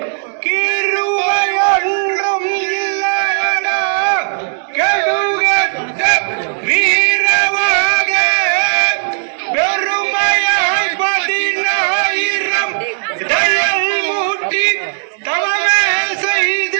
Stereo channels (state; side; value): silent; left; digital silence